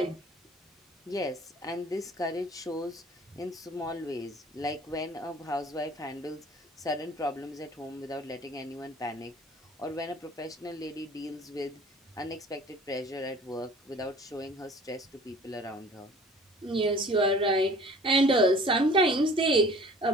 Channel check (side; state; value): both; normal; correlation 0.48